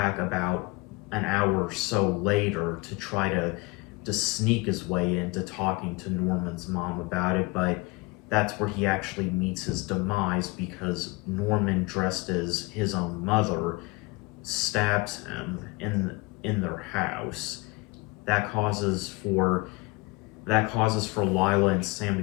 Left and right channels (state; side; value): quieter; right; 25.1 dB